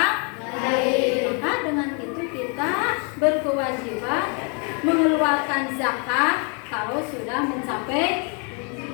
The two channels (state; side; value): quieter; right; 37.1 dB